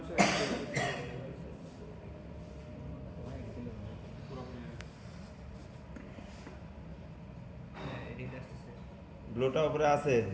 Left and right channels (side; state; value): both; identical; correlation 1.00